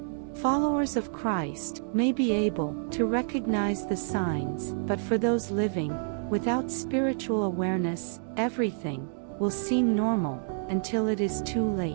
Followers of Christ may be able to recognize the signs, but for those living without spiritual awareness, everything will seem normal until it is too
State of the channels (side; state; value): left; silent; digital silence